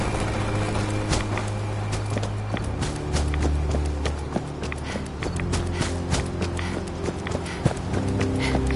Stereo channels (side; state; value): both; identical; correlation 1.00